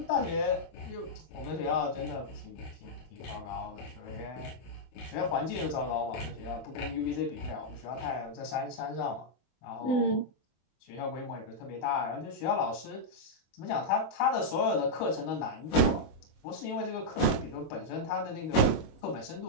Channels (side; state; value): right; late; 24 ms